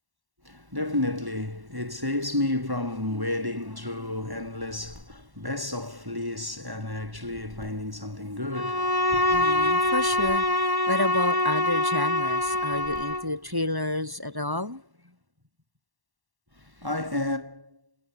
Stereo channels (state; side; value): late; left; 1.1 ms